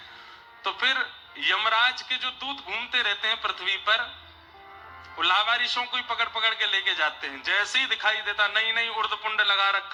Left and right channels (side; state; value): both; identical; correlation 1.00